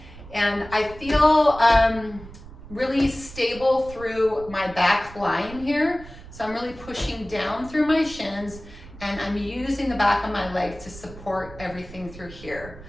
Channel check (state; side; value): noise; right; rumble, 17 dB below the sound